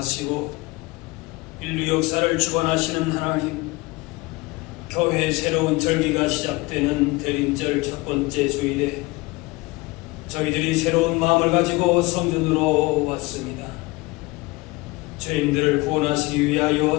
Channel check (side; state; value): right; quieter; 23.0 dB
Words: 인류 역사를 주관하시는 하나님, 교회의 새로운 절기가 시작되는 대림절 첫 번째 주일에 저희들이 새로운 마음을 가지고 성전으로 왔습니다. 죄인들을 구원하시기 위하여